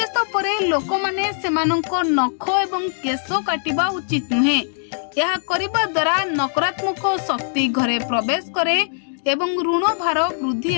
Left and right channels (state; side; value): silent; right; digital silence